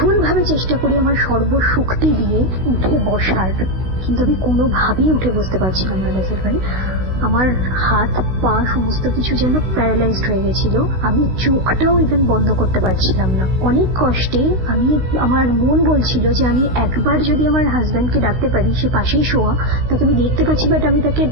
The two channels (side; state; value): left; late; 16 ms